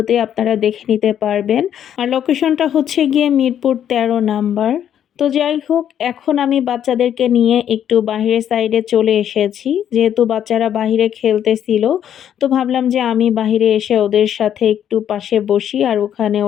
আপনারা দেখে নিতে পারবেন। আর লোকেশনটা হচ্ছে গিয়ে মিরপুর ১৩ নাম্বার। তো যাই হোক, এখন আমি বাচ্চাদেরকে নিয়ে একটু বাহিরের সাইডে চলে এসেছি। যেহেতু বাচ্চারা বাহিরে খেলতেছিল, তো ভাবলাম যে আমি বাহিরে এসে ওদের সাথে একটু পাশে বসি আর ওখানে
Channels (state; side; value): quieter; right; 9.8 dB